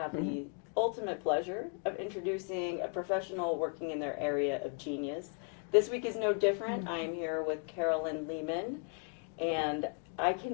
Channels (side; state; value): right; quieter; 39.1 dB